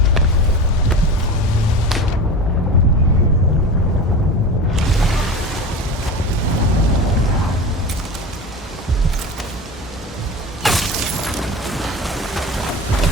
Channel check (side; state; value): both; normal; correlation 0.30